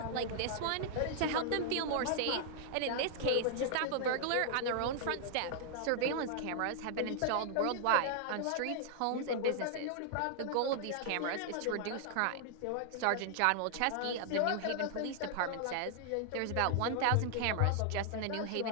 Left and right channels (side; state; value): both; different; correlation 0.00